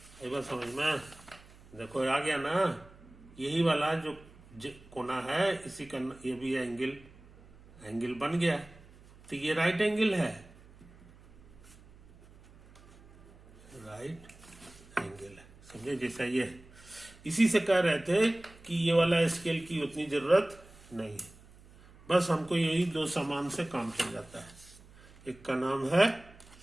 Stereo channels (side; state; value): right; noise; hum, 23 dB below the sound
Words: एक बार समझ में देखो आ गया ना? यही वाला जो कोना है इसी का ये भी एंगल बन गया, तो ये राइट एंगल है, राइट एंगल है, समझे? जैसा ये है। इसी से कह रहे थे कि ये वाला स्केल की उतनी जरूरत नहीं है, बस हमको यही 2 सामान से काम चल जाता है। एक का नाम है